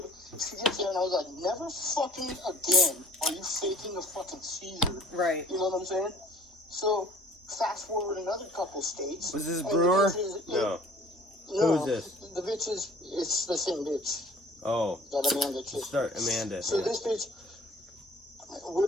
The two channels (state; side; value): normal; both; correlation 0.52